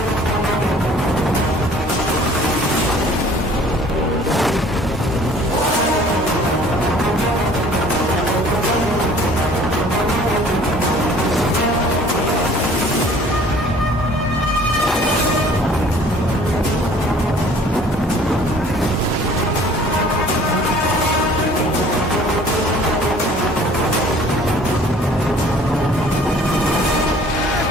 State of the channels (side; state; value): both; normal; correlation 0.52